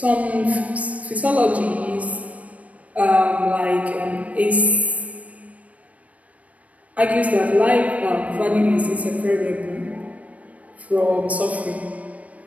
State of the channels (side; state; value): left; late; 0.067 ms